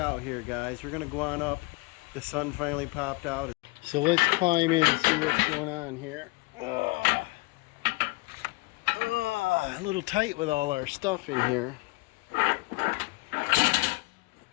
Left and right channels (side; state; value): right; quieter; 25.0 dB